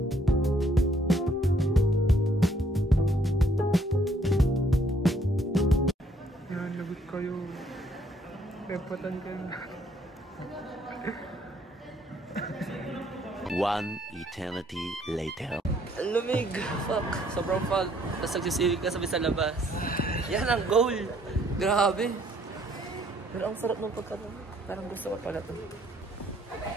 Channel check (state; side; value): normal; both; correlation 0.65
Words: Yan, lagot kayo. Pepatan ka na. One eternity later. Ang lumig. Fuck. Sobrang fog. Tapos nagsisilig ka sabi sa labas. Yan ang goal. Grabe. Pero ang sarap ng pagkaroon. Parang gusto ko pala ito.